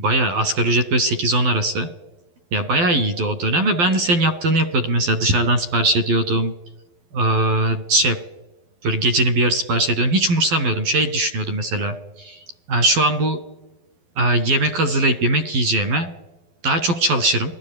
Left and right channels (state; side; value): late; left; 12 ms